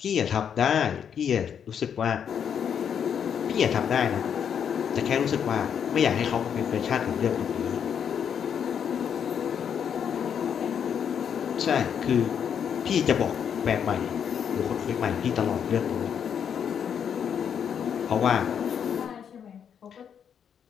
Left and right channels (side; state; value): right; quieter; 8.0 dB